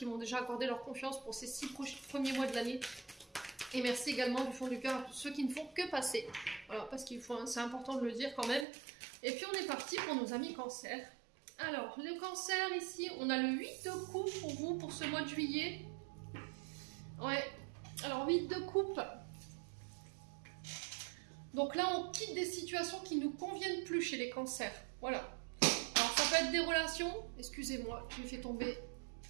m'ont déjà accordé leur confiance pour ces 6 premiers mois de l'année. Et merci également du fond du cœur à tous ceux qui ne font que passer. Voilà, parce qu'il faut, c'est important de le dire quand même. Et puis on est parti pour nos amis cancer. Alors, le cancer ici, on a le 8 de coupe pour vous pour ce mois de juillet. Ouais, alors 8 de coupe. Donc là, on quitte des situations qui ne nous conviennent plus chez les cancers. Voilà. Alors, ça peut être des relations. Excusez-moi, j'ai fait tomber...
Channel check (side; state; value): left; drops out; at 8.7 s